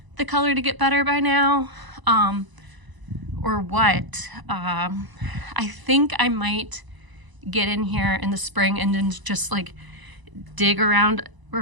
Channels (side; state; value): left; late; 1.0 ms